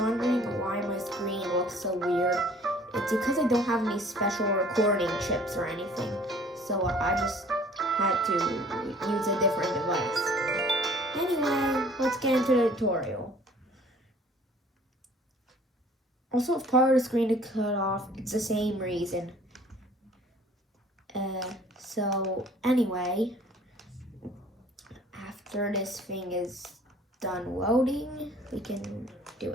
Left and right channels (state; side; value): normal; both; correlation 0.53